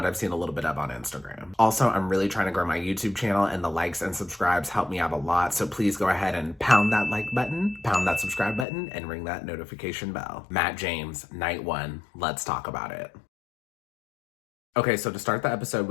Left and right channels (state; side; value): drops out; right; at 8.7 s